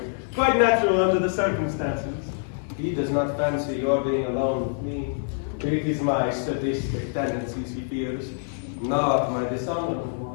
Quite natural under the circumstances. He does not fancy your being alone with me. It is my sadistic tendencies he fears, not my dishonorable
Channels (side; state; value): right; silent; digital silence